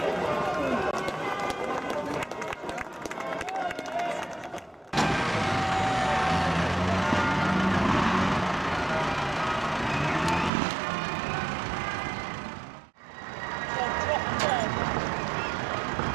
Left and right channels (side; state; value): left; drops out; at 10.5 s